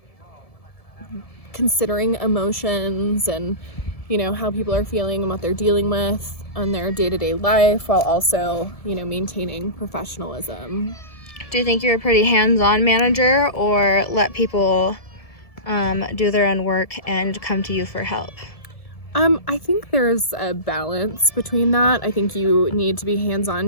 considering emotions and, how people are feeling and what they're dealing with on their day-to-day life, while also, maintaining professionalism. Do you think you're a pretty hands-on manager, or let people do their own work and come to you for help? I think there's a balance between that. I think you need to be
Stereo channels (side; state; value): right; late; 1.7 ms